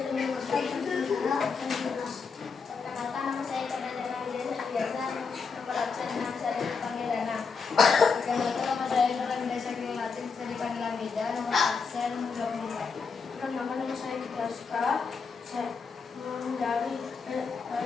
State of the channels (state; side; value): quieter; right; 5.2 dB